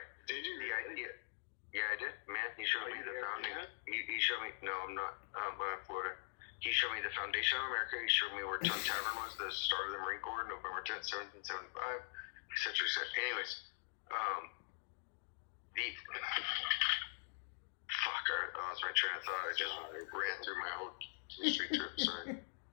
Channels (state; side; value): silent; right; digital silence